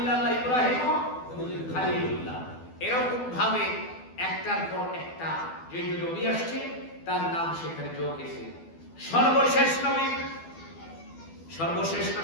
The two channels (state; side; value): late; right; 12 ms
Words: ইব্রাহিম খলিলুল্লাহ। এরকম ভাবে একটার পর একটা যে নবী আসছে তার নাম সেখানে যোগ হয়েছে। সর্বশেষ নবী, সর্বশেষ না